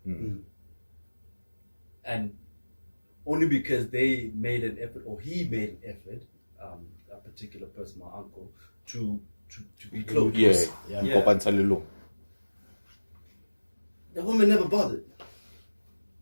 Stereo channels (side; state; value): both; inverted; correlation -1.00